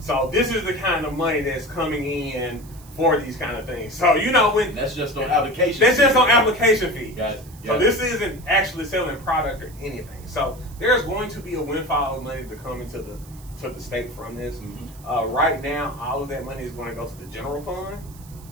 this is the kind of money that's coming in for these kind of things. So when that's just on application. That's just on application fees. Got it. So this isn't actually selling product or anything. So there's going to be a windfall of money to come into the state from this. Right now, all of that money is going to go to the general fund,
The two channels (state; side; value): noise; right; hiss, 23 dB below the sound